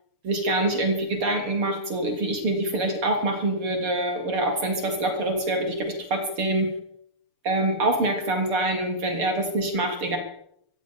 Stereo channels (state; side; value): late; left; 6.8 ms